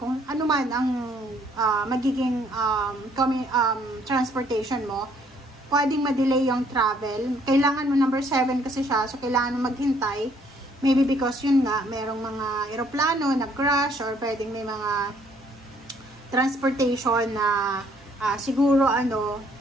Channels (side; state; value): both; normal; correlation 0.64